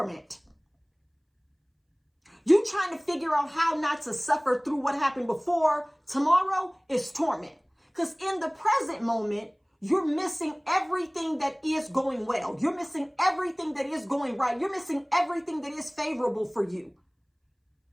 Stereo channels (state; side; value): identical; both; correlation 1.00